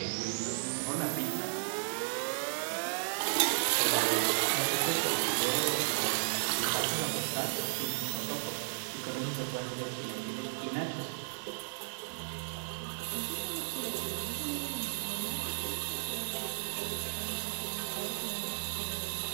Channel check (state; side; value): silent; left; 55 dB below the other